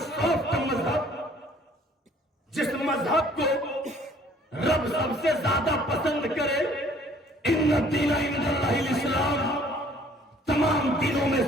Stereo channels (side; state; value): both; normal; correlation 0.57